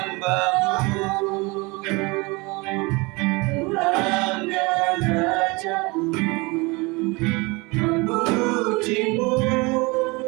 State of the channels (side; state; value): left; quieter; 25.9 dB